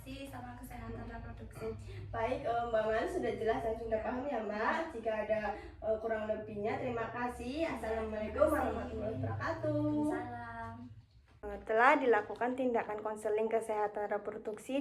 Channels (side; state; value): both; identical; correlation 1.00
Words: sama kesehatan reproduksi. Baik, Mbak Man sudah jelas dan sudah paham ya Mbak. Jika ada kurang lebihnya, terima kasih. Assalamualaikum warahmatullahi wabarakatuh. Salam. Telah dilakukan tindakan konseling kesehatan